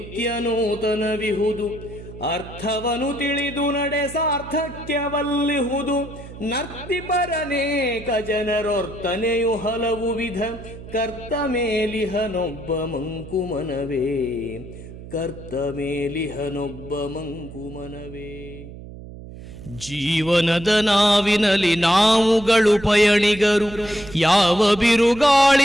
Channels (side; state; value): right; noise; hum, 14 dB below the sound